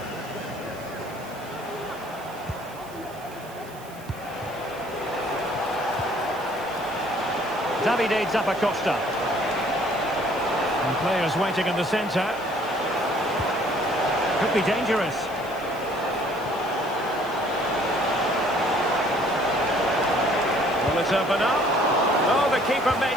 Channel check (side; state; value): right; noise; hiss, 21 dB below the sound